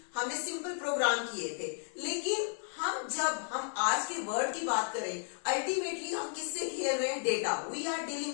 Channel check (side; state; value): right; silent; digital silence